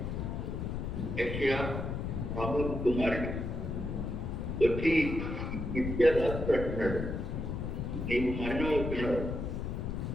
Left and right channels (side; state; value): left; noise; rumble, 3 dB below the sound